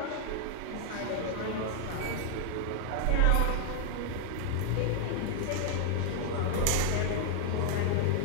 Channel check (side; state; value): both; different; correlation 0.00